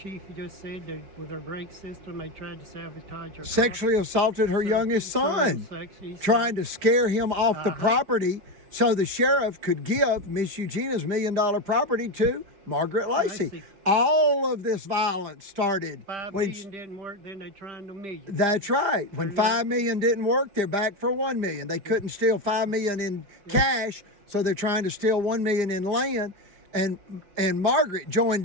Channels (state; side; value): late; left; 4.9 ms